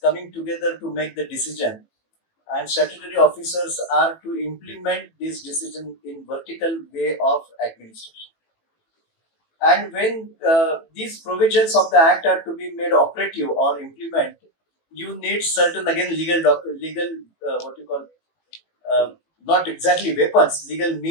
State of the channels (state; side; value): late; right; 18 ms